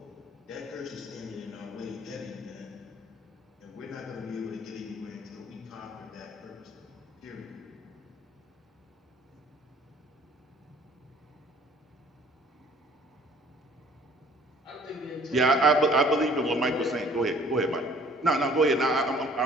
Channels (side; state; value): both; normal; correlation 0.55